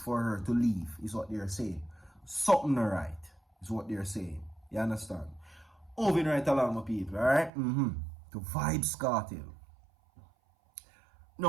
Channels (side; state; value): left; drops out; at 7.5 s